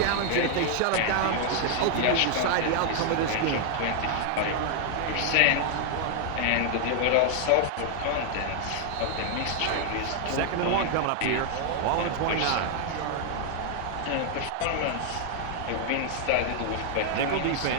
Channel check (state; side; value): different; both; correlation 0.00